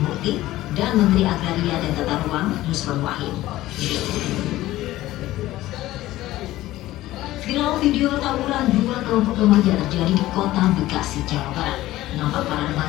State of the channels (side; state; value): right; quieter; 16.0 dB